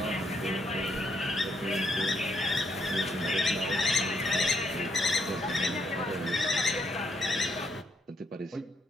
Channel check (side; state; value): both; normal; correlation 0.75